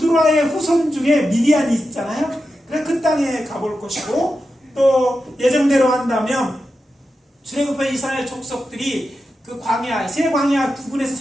후손 중에 미디안이 있잖아요. 그래서 그 땅에 가볼 것이고, 또 예정대로 한다면 출애굽한 이스라엘 족속들이 그 광야, 새 광야 부근에서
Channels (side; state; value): both; normal; correlation 0.90